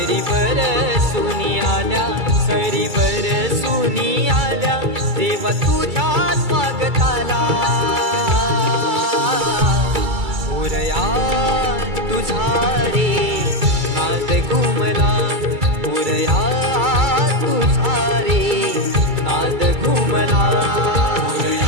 सुनी आल्या सरीवर सुनी आल्या देवा तुझ्या स्वागताला मोरया तुझा रे नाद घुमला मोरया तुझा रे नाद घुमला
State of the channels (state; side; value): late; left; 2.3 ms